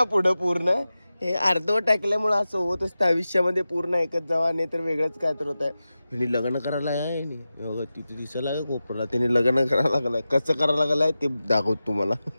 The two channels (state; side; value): inverted; both; correlation -0.94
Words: पुढं पूर्ण हे अर्धवट टाकल्यामुळे असं होत असतं आयुष्यामध्ये. पूर्ण ऐकत जावा, नाही तर वेगळंच काय तर होत आहे. ह्यानी लग्न करायला आहे तिथे दिसायला आहे कोपरला. त्याने लग्न करायला लागलाय. कसं करायला लागलाय ते दाखवतो तुम्हाला.